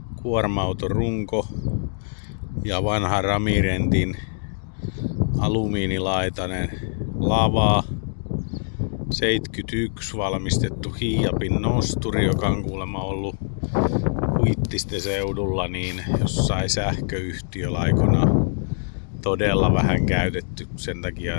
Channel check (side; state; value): right; silent; digital silence